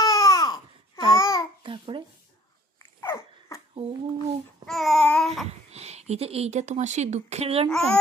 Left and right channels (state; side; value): normal; both; correlation 0.54